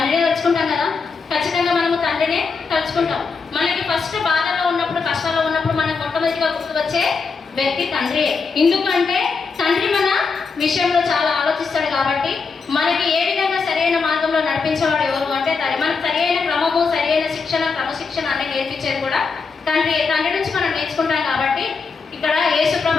తలుచుకుంటాం కదా. ఖచ్చితంగా మనము తండ్రినే తలుచుకుంటాం. మనకి ఫస్ట్ బాధలో ఉన్నప్పుడు, కష్టాల్లో ఉన్నప్పుడు మనకు మొట్టమొదటిగా గుర్తుకొచ్చే వ్యక్తి తండ్రియే. ఎందుకంటే తండ్రి మన విషయంలో చాలా ఆలోచిస్తాడు కాబట్టి, మనకి ఏ విధంగా సరైన మార్గంలో నడిపించేవాడు ఎవరు అంటే తండ్రి. మనకు సరైన క్రమము, సరైన శిక్షణ, క్రమశిక్షణ అనేది నేర్పించేది కూడా తండ్రి. తండ్రి నుంచి మనం నేర్చుకుంటాం కాబట్టి ఇక్కడ యేసు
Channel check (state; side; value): quieter; right; 4.9 dB